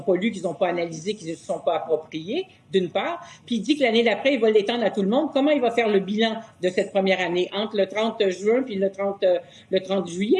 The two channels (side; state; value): both; identical; correlation 1.00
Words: pas lu, qu'ils n'ont pas analysé, qu'ils ne se sont pas appropriés, d'une part. Puis il dit que l'année d'après, il va l'étendre à tout le monde. Comment il va faire le bilan de cette première année entre le 30 juin puis le 30